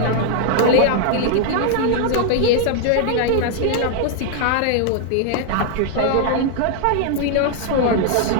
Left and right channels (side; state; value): both; different; correlation 0.00